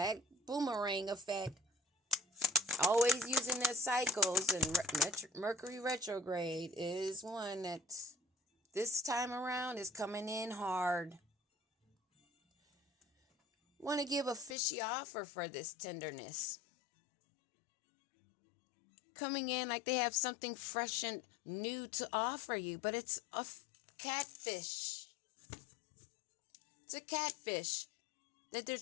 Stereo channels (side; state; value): right; drops out; at 14.6 s